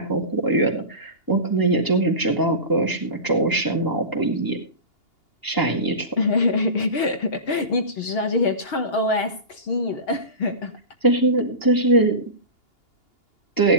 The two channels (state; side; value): late; right; 2.8 ms